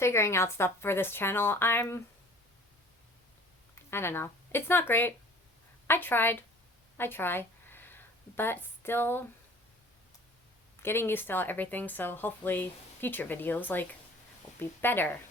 out stuff for this channel. I don't know. It's not great. I try, but still getting used to everything, so hopefully future videos like will be better,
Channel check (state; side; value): normal; both; correlation 0.49